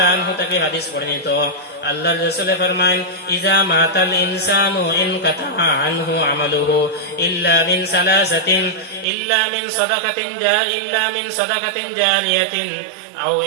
আনহু থেকে হাদিস বর্ণিত, আল্লাহর রাসূল ফরমায়েন, ইজা মাতাল ইনসানু ইনকাতা আনহু আমালুহু ইল্লা মিন সালাসাতিন, ইল্লা মিন সাদাকাতিন জারিয়াতিন আও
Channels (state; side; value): drops out; left; at 9.1 s